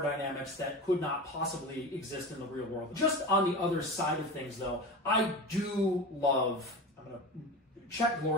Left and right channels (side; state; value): both; normal; correlation 0.28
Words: dynamics that could not possibly exist in the real world. Just on the other side of things, though, I do love... I'm going to... Check